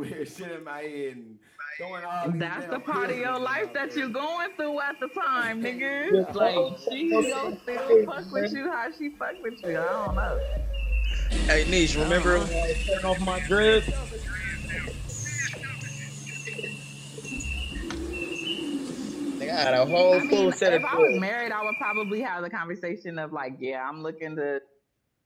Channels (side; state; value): both; identical; correlation 1.00